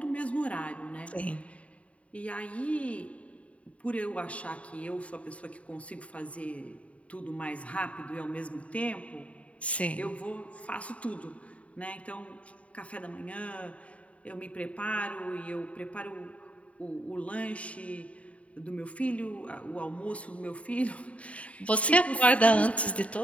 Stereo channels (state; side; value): late; right; 0.065 ms